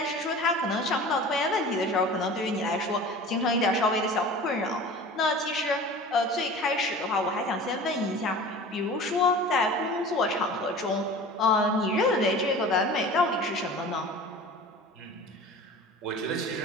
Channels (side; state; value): both; normal; correlation 0.39